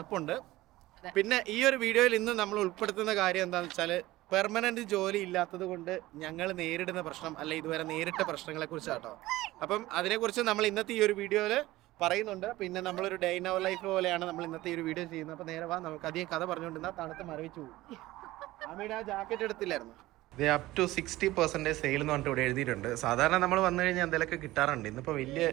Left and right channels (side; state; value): left; quieter; 17.6 dB